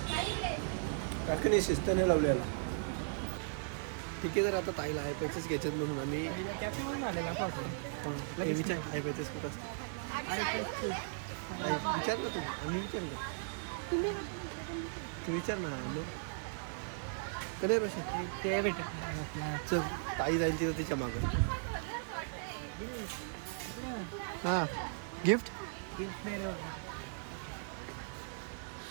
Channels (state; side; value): silent; left; digital silence